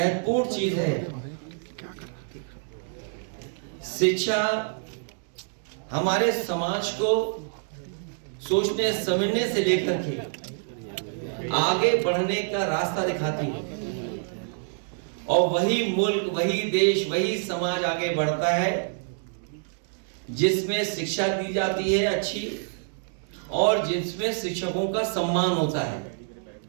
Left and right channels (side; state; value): left; silent; digital silence